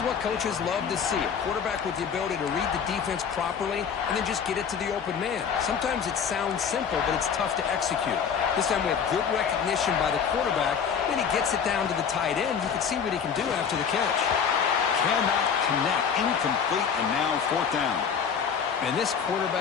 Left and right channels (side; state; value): right; quieter; 7.0 dB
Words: what coaches love to see. A quarterback with the ability to read the defense properly and then just get it to the open man. Sometimes it sounds simple, but it's tough to execute. This time we have good recognition by the quarterback. Then he gets it down to the tight end. You can see what he can do after the catch. Cannot connect. Incomplete, and now fourth down. And this